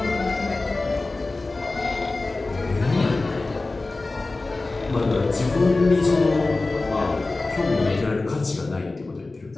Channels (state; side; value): quieter; right; 3.3 dB